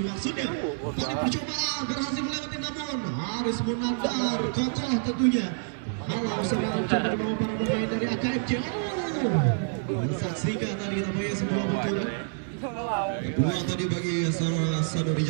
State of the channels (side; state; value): left; silent; digital silence